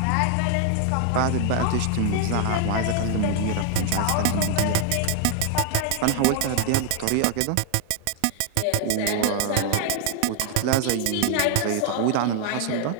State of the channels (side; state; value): both; different; correlation 0.00